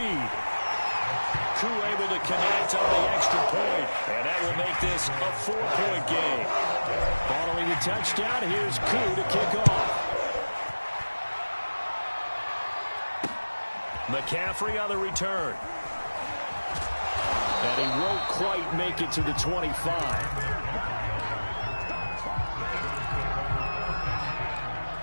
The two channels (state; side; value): inverted; both; correlation -1.00